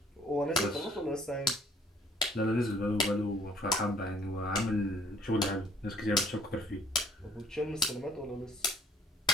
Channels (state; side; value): normal; both; correlation 0.61